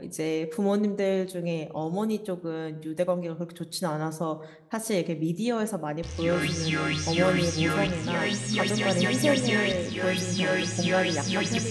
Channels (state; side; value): identical; both; correlation 1.00